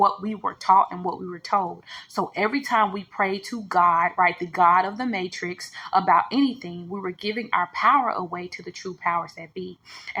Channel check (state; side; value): identical; both; correlation 1.00